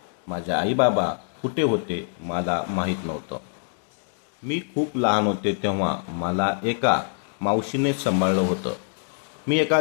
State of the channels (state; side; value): silent; right; digital silence